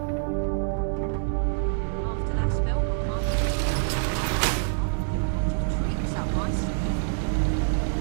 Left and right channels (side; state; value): left; silent; digital silence